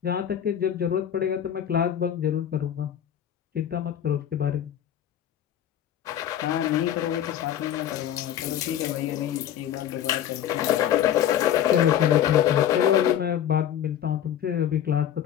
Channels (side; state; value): right; quieter; 10.4 dB